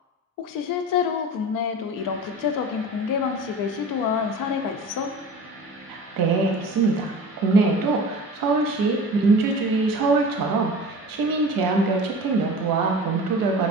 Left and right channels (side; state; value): both; normal; correlation 0.37